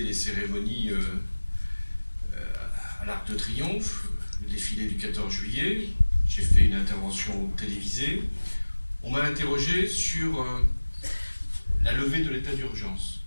les cérémonies à l'Arc de Triomphe, le défilé du 14 juillet. J'ai fait une intervention télévisée. On m'a interrogé sur la levée de l'état d'urgence.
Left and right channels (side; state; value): both; inverted; correlation -1.00